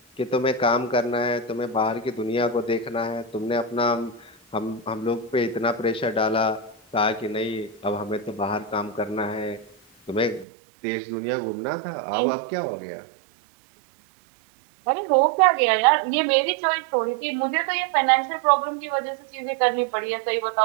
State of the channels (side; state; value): left; drops out; at 10.5 s